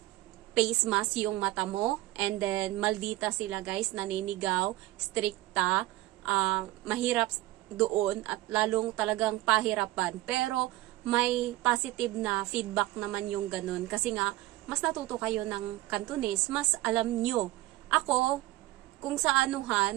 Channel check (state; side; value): quieter; left; 17.1 dB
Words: face mask yung mata mo, and then maldita sila guys, naninigaw, strikta, mahirap doon at lalong talagang pahirapan. Pero may positive na feedback naman yung ganun kasi nga mas natuto kayo ng Cantonese, mas alam nyo. Ako, kung sa